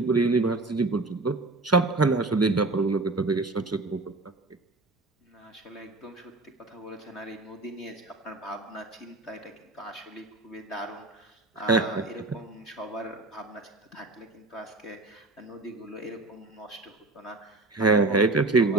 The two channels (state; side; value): quieter; left; 3.2 dB